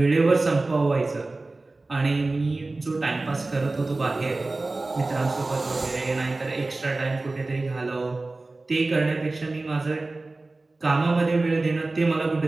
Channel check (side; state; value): left; quieter; 3.2 dB